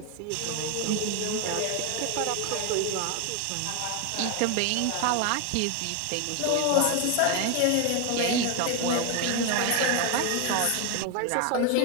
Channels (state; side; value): different; both; correlation 0.01